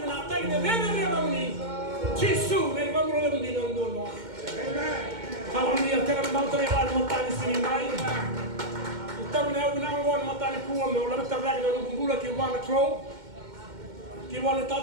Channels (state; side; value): late; left; 2.1 ms